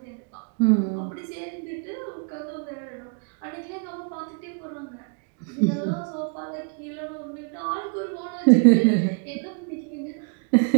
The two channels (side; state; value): left; quieter; 35.1 dB